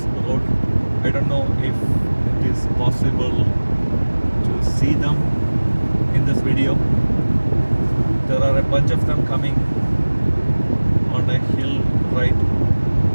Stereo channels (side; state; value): both; inverted; correlation -1.00